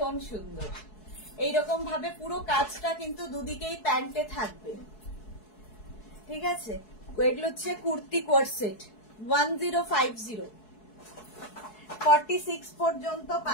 সুন্দর, এইরকম ভাবে পুরো কাজটা কিন্তু দুদিকেই প্যান্টে থাকবে, ঠিক আছে। এগুলো হচ্ছে কুর্তি কোয়ার্ড সেট, 1050, 46 পর্যন্ত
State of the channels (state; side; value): late; right; 4.7 ms